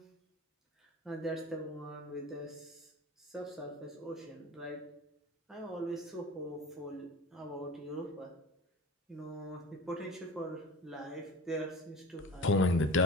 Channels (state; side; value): normal; both; correlation 0.36